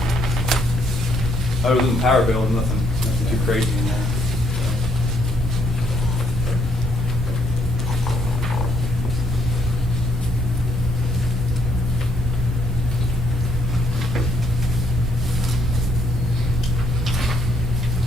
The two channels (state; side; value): normal; both; correlation 0.71